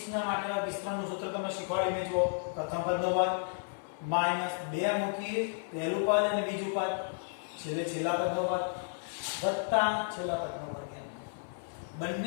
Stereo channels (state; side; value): silent; right; 56 dB below the other